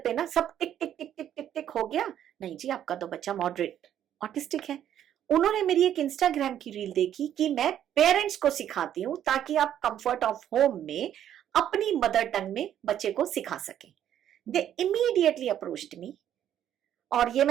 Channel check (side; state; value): left; quieter; 10.6 dB